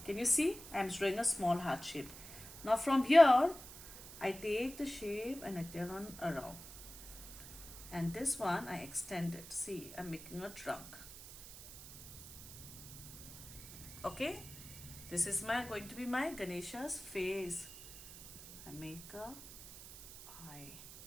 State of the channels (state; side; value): noise; right; hiss, 14 dB below the sound